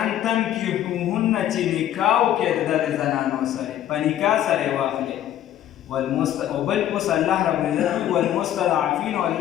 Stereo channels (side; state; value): right; quieter; 11.7 dB